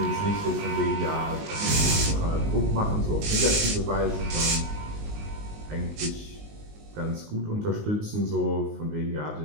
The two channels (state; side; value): late; left; 19 ms